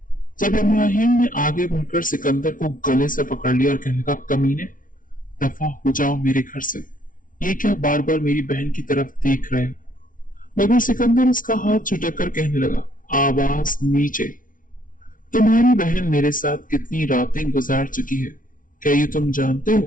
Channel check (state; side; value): late; right; 0.39 ms